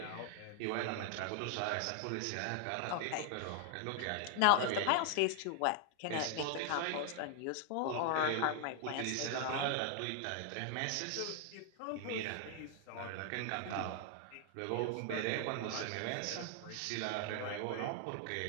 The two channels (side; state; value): both; different; correlation 0.00